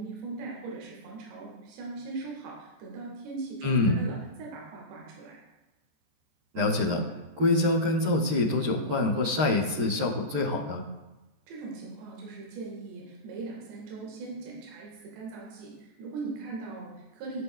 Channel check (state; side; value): late; left; 13 ms